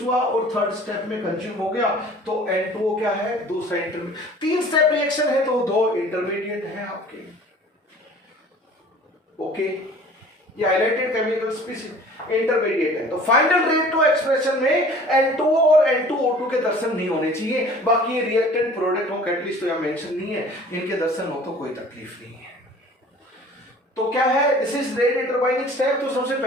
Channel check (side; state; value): both; normal; correlation 0.48